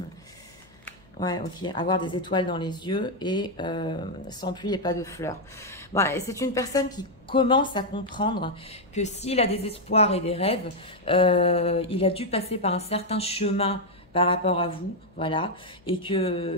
Ouais, ok. Avoir des étoiles dans les yeux et sans pluie et pas de fleurs. Bon, c'est une personne qui commence à comprendre que s'il a des espoirs et des rêves, il a dû passer par un certain chemin par rapport à vous, voilà, et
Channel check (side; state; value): left; noise; hum, 29 dB below the sound